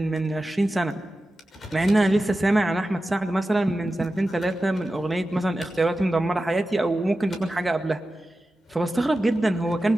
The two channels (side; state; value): both; normal; correlation 0.93